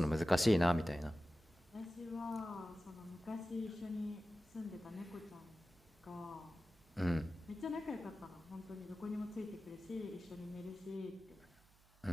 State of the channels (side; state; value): right; noise; hum, 28 dB below the sound